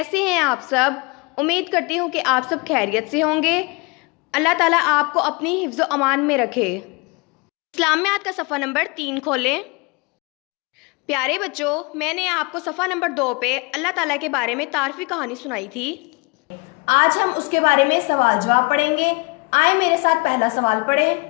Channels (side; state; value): right; quieter; 28.5 dB